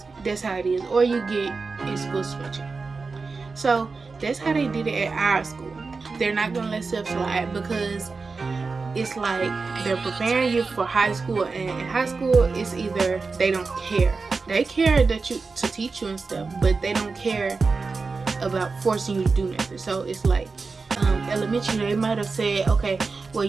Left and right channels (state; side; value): quieter; left; 4.3 dB